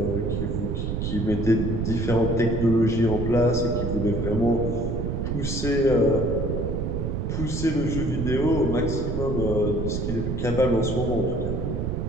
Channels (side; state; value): right; noise; rumble, 2 dB below the sound